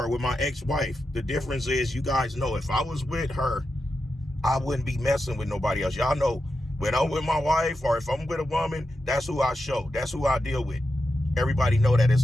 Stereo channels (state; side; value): normal; both; correlation 0.88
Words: with my ex-wife. The difference is, you guys know, if I was with her, I wouldn't be messing with nobody else. Y'all know, when I'm with my wife or if I'm with a woman, that's who I show. That's who I deal with. Everybody know that